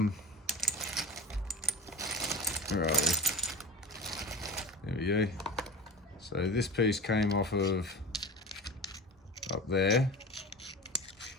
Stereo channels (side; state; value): both; normal; correlation 0.34